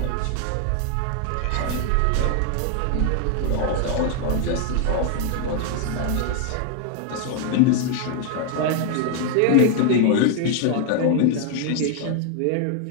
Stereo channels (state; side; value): different; both; correlation 0.00